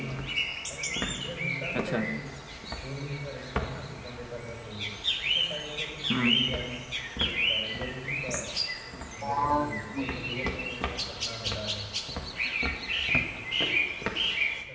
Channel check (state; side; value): identical; both; correlation 1.00